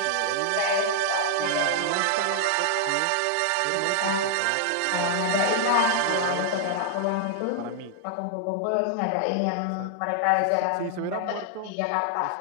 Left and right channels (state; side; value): different; both; correlation 0.00